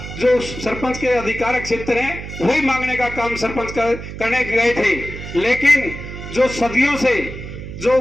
जो सरपंच के अधिकार क्षेत्र हैं वही मांगने का काम सरपंच करने गए थे। लेकिन जो सदियों से जो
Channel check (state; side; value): noise; right; hum, 10 dB below the sound